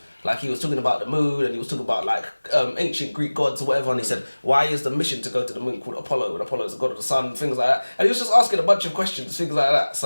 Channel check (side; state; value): both; inverted; correlation -1.00